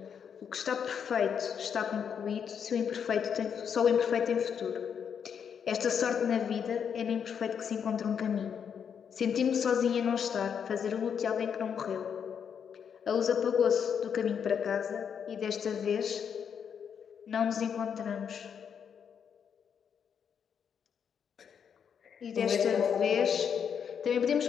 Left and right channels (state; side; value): quieter; right; 7.5 dB